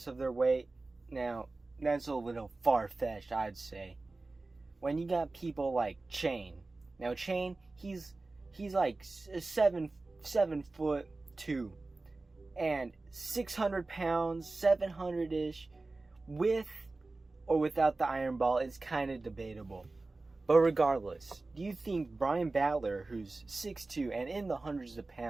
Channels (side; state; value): left; quieter; 3.3 dB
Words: of their weight? Now, that's a little far-fetched, I'd say. When you got people like Chain. Now, Chain, he's like 7'2", and 600 pounds, 700-ish, with or without the iron ball is kind of debatable. But regardless, do you think Brian Battler, who's 6'2" and in the hundreds of